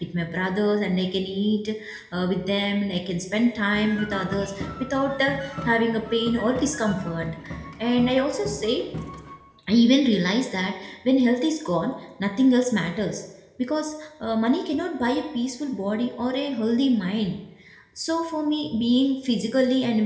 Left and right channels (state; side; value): identical; both; correlation 1.00